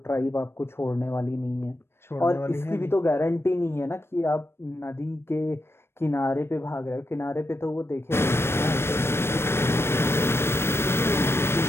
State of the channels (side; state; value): right; late; 0.12 ms